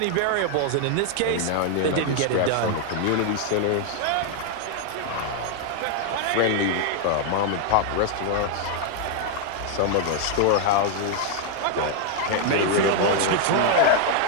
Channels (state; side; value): different; both; correlation 0.00